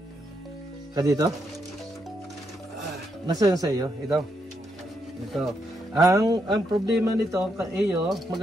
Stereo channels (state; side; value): normal; both; correlation 0.79